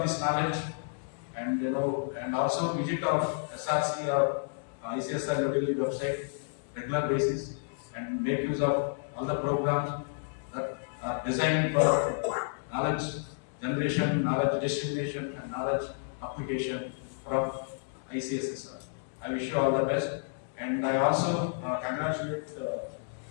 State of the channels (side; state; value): right; silent; digital silence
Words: this knowledge, and and also visit our SRC or ICSR New Delhi website regular basis and make use of all the programs that are designed for knowledge generation, knowledge dissemination, and knowledge application from ICSSR. I wish you all the best, and I also congratulate the